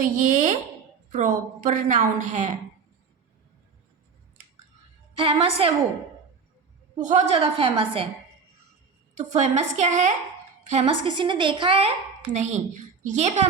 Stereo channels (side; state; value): left; quieter; 5.4 dB